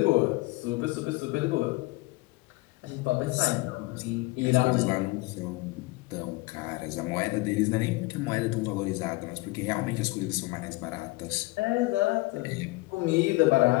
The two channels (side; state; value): right; quieter; 22.4 dB